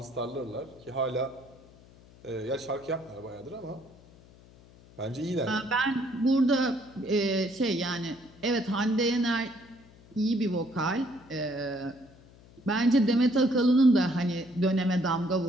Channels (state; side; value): noise; left; hum, 24 dB below the sound